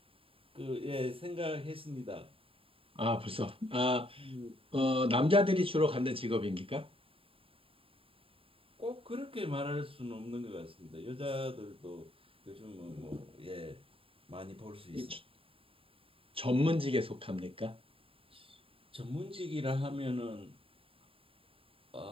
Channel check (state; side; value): late; left; 0.27 ms